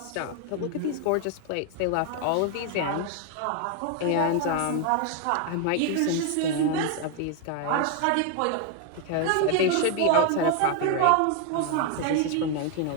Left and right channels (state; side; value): different; both; correlation 0.01